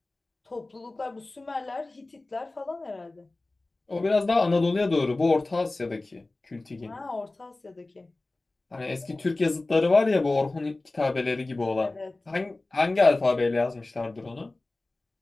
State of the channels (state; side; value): quieter; right; 3.0 dB